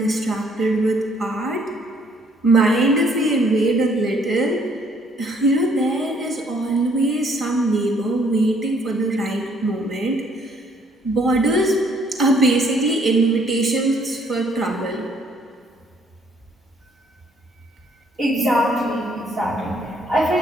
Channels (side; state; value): both; normal; correlation 0.64